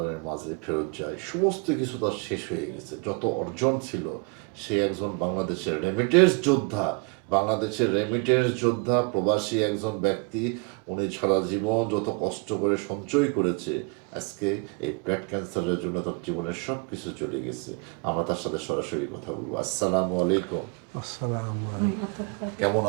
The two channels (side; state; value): left; quieter; 31.9 dB